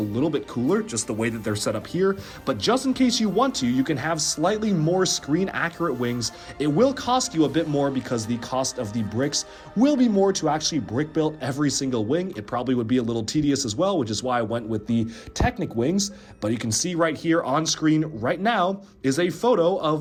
little bit cooler, just the way that they're set up here. But just in case you want to, you can have slightly more screen accurate wings. It will cost you a bit more because the cost of the bricks will be more to actually brick build every single wing. It probably would be a little tedious as well, which is why I went with the Technic wings. But you can see right here on screen right now is a photo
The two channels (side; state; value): both; identical; correlation 1.00